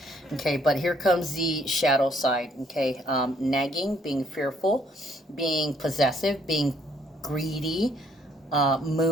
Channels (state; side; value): normal; both; correlation 0.66